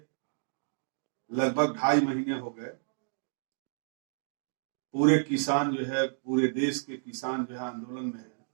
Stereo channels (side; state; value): left; silent; digital silence